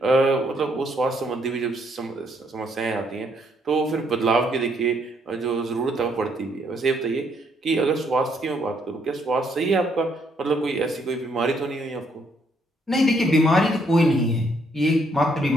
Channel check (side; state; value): both; normal; correlation 0.70